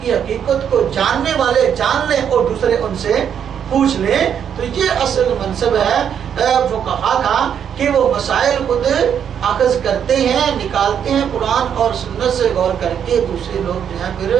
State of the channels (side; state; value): left; quieter; 8.4 dB